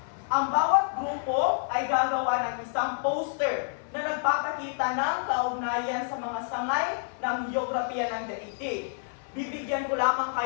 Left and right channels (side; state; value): right; silent; 59 dB below the other